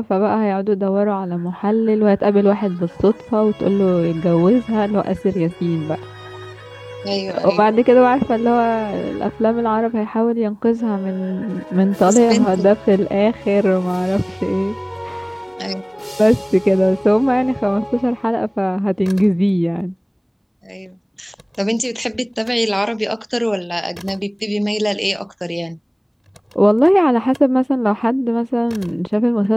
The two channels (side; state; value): both; identical; correlation 1.00